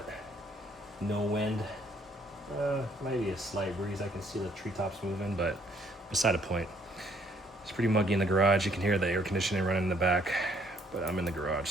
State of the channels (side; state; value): both; normal; correlation 0.66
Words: no wind. Maybe a slight breeze. I can see the treetops moving, but beside the point. It's pretty muggy in the garage. You can hear the air conditioning running in the back, but I'm in the garage,